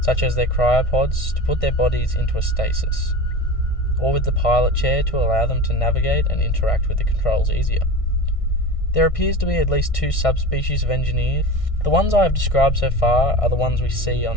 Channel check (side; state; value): right; late; 1.6 ms